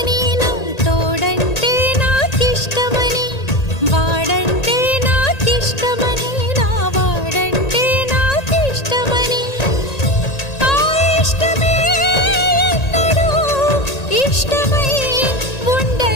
నా తోడంటే నాకిష్టమని, వాడంటే నాకిష్టమని, నా వాడంటే నాకిష్టమని. ఆ ఇష్టమే ఎన్నడూ ఇష్టమై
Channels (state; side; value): late; right; 1.8 ms